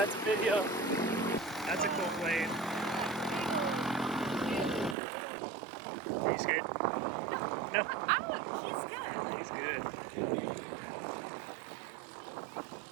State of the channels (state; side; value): drops out; left; at 5.0 s